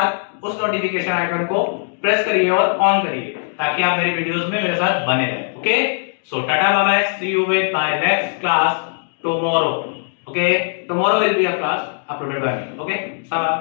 उस नोटिफिकेशन आइकन को प्रेस करिए और ऑन करिए ताकि आप मेरी वीडियोस में मेरे साथ बने रहें। Okay, so tata bye bye, see you with my next class tomorrow. Okay, tomorrow will be a class uploaded by me. Okay, so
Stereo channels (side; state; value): right; silent; digital silence